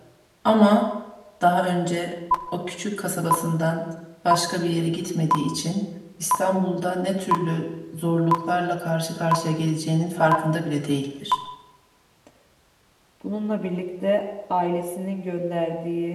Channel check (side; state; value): both; identical; correlation 1.00